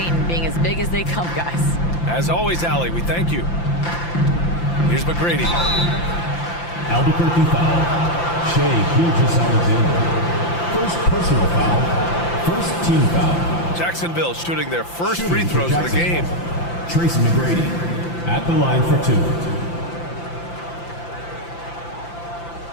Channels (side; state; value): right; late; 5.8 ms